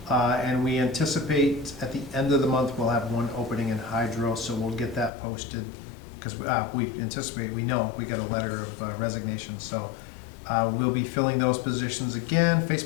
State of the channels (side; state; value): right; drops out; at 5.1 s